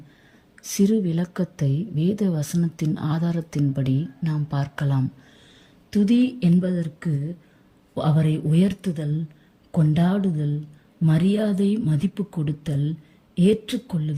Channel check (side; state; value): both; identical; correlation 1.00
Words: சிறு விளக்கத்தை வேத வசனத்தின் ஆதாரத்தின்படி நாம் பார்க்கலாம். துதி என்பதற்கு அவரை உயர்த்துதல், கொண்டாடுதல், மரியாதை மதிப்பு கொடுத்தல்,